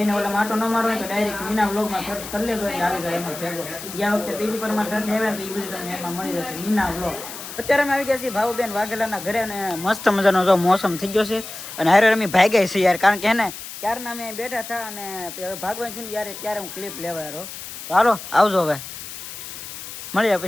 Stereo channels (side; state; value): left; noise; hiss, 11 dB below the sound